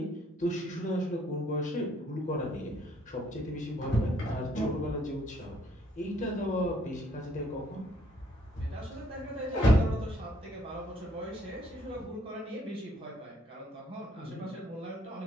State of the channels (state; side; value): normal; both; correlation 0.66